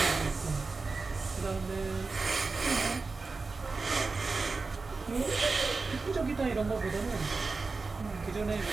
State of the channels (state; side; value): quieter; left; 4.0 dB